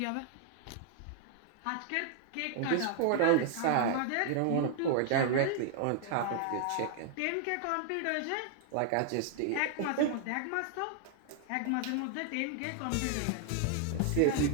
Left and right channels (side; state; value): both; different; correlation 0.00